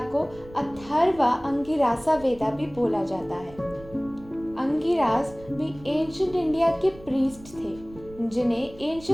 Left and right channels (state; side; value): noise; right; rumble, 20 dB below the sound